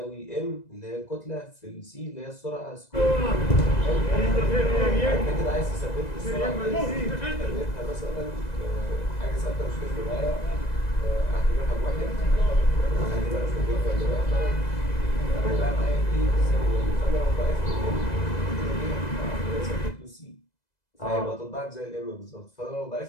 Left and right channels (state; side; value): late; right; 2.0 ms